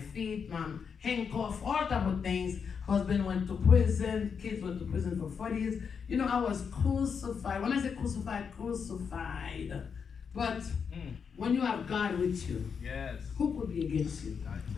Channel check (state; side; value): quieter; right; 6.4 dB